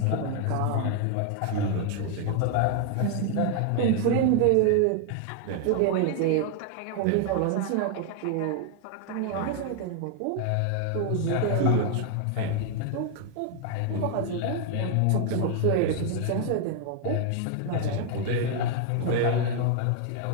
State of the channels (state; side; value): different; both; correlation 0.00